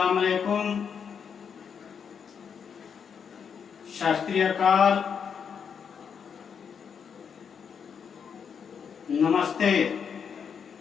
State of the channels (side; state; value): right; quieter; 7.0 dB